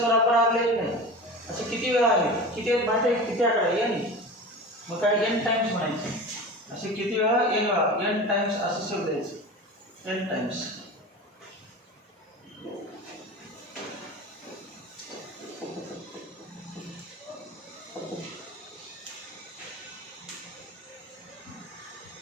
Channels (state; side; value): normal; both; correlation 0.32